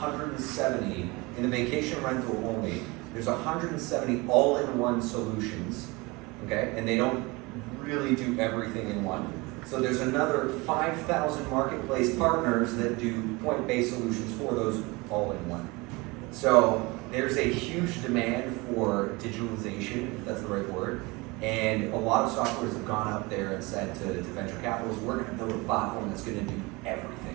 in the vacation rental only, there's 170 all-in-one solutions, okay? And they don't really do everything in one. So there's another 5,000 marketplace partners that do point-based solutions for those all-in-one. So there's a huge demand for digitalization, if that's the right word, and a lot of softwares have gone out there and said to venture capitalists, we're going to build a platform that's going to do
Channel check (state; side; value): quieter; left; 24.7 dB